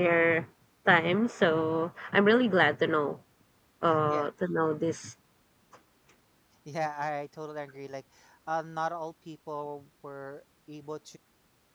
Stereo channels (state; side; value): identical; both; correlation 1.00